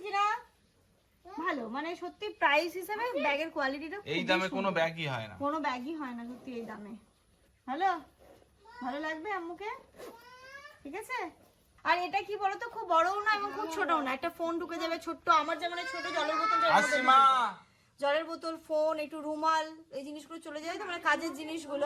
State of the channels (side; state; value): both; identical; correlation 1.00